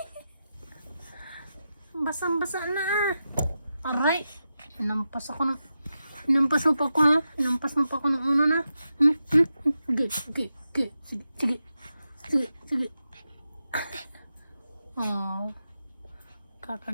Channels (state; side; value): inverted; both; correlation -0.89